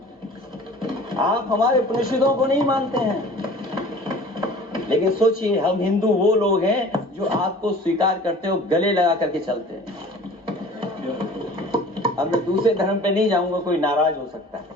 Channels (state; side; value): normal; both; correlation 0.45